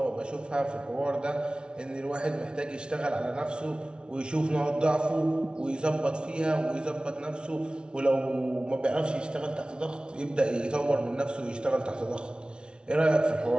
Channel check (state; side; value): late; left; 0.056 ms